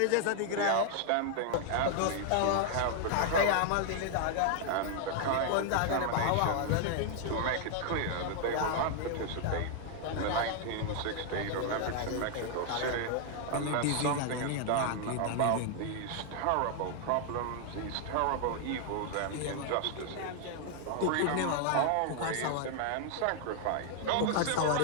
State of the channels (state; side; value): different; both; correlation 0.00